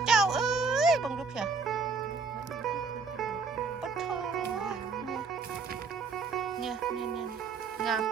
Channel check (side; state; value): left; quieter; 4.8 dB